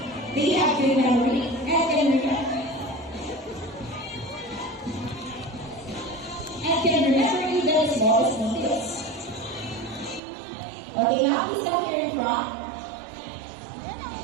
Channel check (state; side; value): drops out; left; at 10.2 s